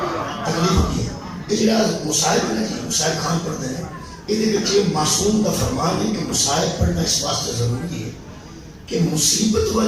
یہ جڑا مصائب ہے نا جی مصائب خان پڑھتے ہیں یہ معصوم کا فرمان ہے کہ مصائب پڑھنا اس واسطے ضروری ہے کہ مصیبت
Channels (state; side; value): identical; both; correlation 1.00